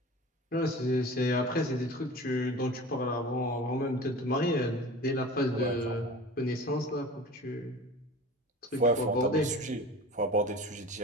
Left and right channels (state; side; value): normal; both; correlation 0.38